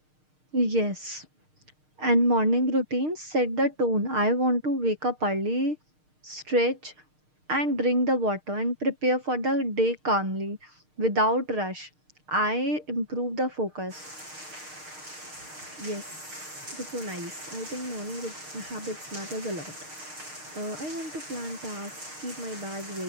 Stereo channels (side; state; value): left; late; 6.5 ms